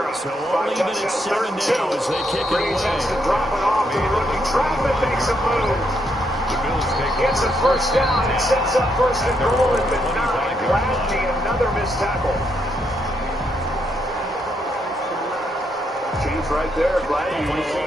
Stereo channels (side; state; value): both; normal; correlation 0.77